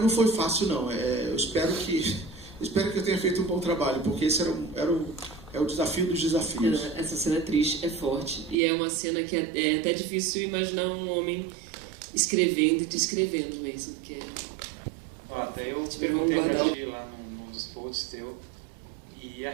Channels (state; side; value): drops out; left; at 8.6 s